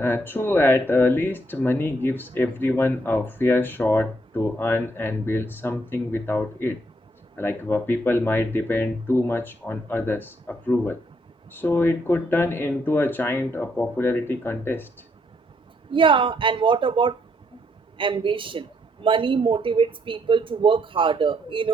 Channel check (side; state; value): both; normal; correlation 0.73